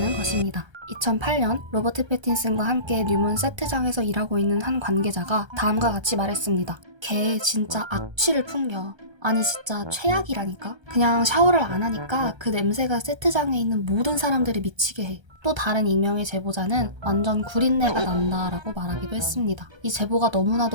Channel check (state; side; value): late; left; 1.3 ms